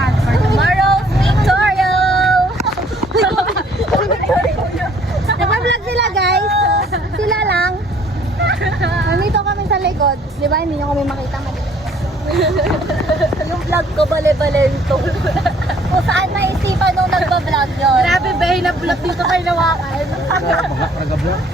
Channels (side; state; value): both; normal; correlation 0.60